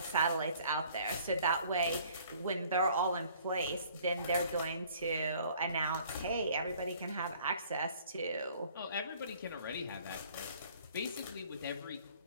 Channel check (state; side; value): inverted; both; correlation -0.55